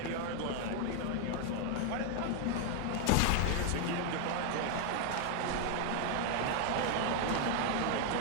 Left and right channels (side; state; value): both; different; correlation 0.00